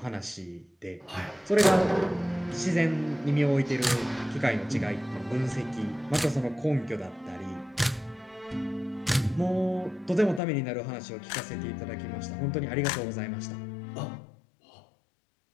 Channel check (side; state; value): right; drops out; at 10.4 s